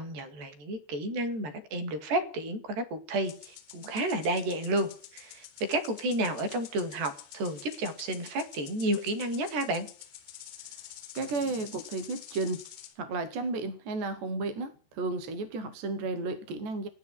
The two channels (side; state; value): left; late; 14 ms